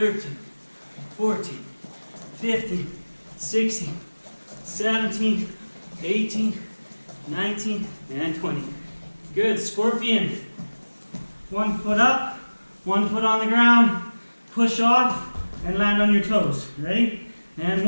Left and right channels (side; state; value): both; inverted; correlation -1.00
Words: 14, 15, 16, 17, 18, 19, and 20. Good. Scorpion. 1 foot up, 1 foot on the ground, push off, and land on your toes. Ready? And